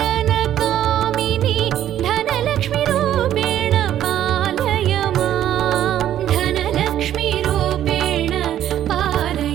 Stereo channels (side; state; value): left; quieter; 11.4 dB